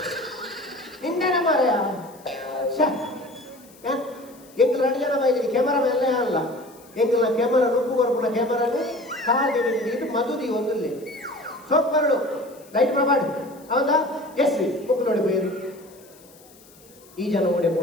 ಇಂಡನೆ ಮಾರಯ ಎಂಗ್ಲ 2 ಜನ ಬೈದಿರಿ ಕ್ಯಾಮರಾ ಮೇಲೆ ಅಲ್ಲ ಎಂಗ್ಲ ಕ್ಯಾಮರಾ ನುಪ್ಪು ಕೊರ್ಪುನ ಕ್ಯಾಮರಾನು ಕಾದಿ ನೀರು ಮದುದಿ ಒಂದಲ್ಲಿ ಸೋಪ್ ಬರಡು ಲೈಟ್ ಪ್ರಮಾಡ್ ಅವಂದ ಎಸ್ ಬುಕ್ ನೋಡಿ ಬೇರು ಈ ಜನ ಓಡೆ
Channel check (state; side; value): noise; left; hiss, 25 dB below the sound